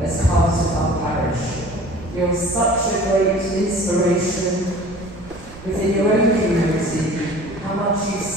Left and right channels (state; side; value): noise; right; rumble, 19 dB below the sound